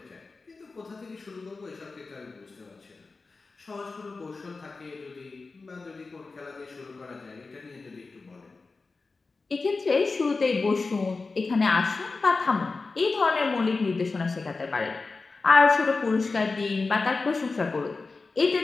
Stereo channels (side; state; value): right; quieter; 4.0 dB